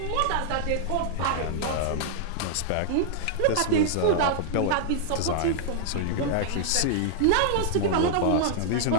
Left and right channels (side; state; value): both; different; correlation -0.01